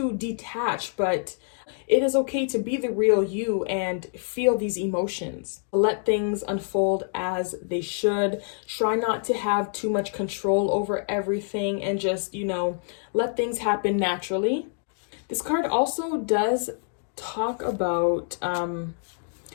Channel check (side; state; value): right; silent; digital silence